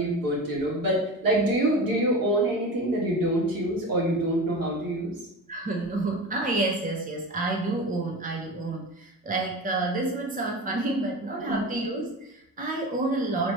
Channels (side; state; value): both; normal; correlation 0.29